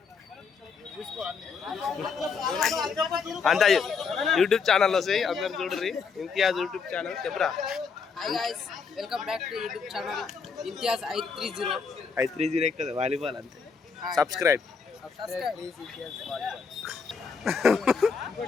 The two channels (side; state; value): right; quieter; 5.5 dB